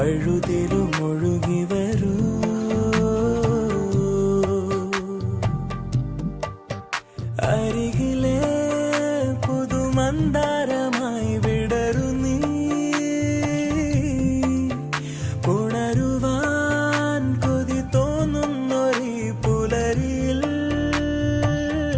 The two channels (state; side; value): identical; both; correlation 1.00